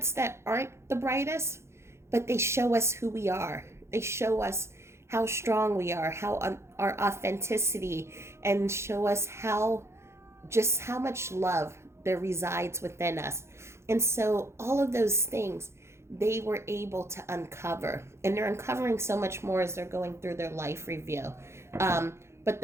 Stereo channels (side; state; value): left; late; 0.13 ms